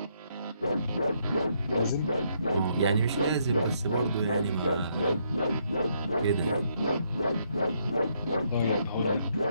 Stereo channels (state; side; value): inverted; both; correlation -0.74